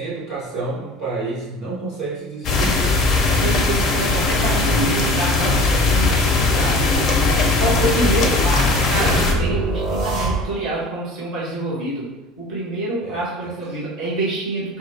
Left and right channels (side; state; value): both; normal; correlation 0.42